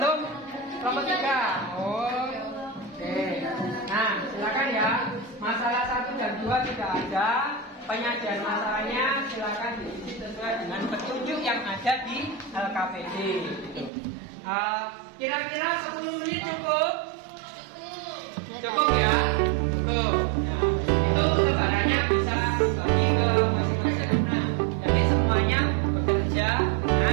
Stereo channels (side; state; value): left; drops out; at 13.9 s